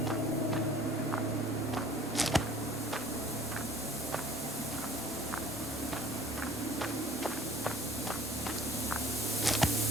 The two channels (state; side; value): normal; both; correlation 0.54